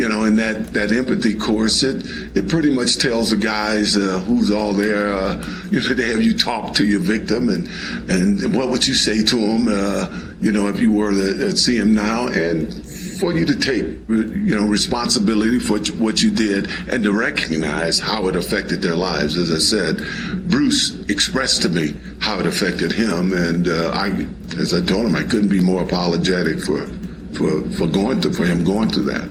that empathy course, it pretty much tells the guys who's all there. They have you talk to your victim and what would you say to him, if you were to see him now, and for you to take, responsibility for what you did and to recognize how it affected their lives. As I said, Bruce expressed to me how it affected him, and as I told him, I couldn't be more apologetic for him going through that.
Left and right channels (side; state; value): both; identical; correlation 1.00